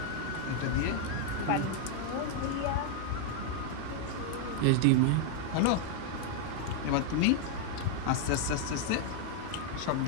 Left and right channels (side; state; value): both; different; correlation 0.00